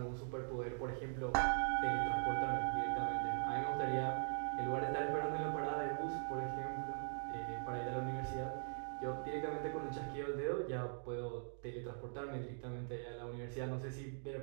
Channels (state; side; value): silent; left; digital silence